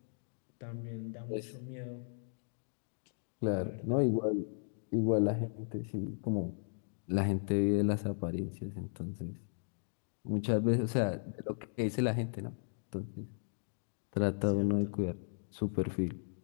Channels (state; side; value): silent; right; digital silence